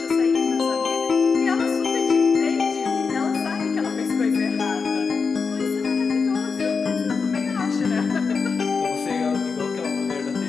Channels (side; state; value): right; quieter; 5.1 dB